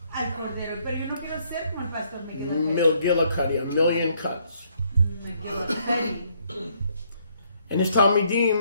al cordero. Pero yo no quiero ser como el pastor McGillicuddy. McGillicuddy, a million cuts. McGillicuddy. And his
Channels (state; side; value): inverted; both; correlation -0.69